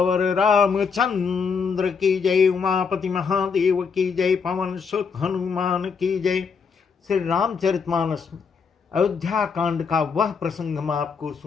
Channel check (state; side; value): quieter; right; 5.7 dB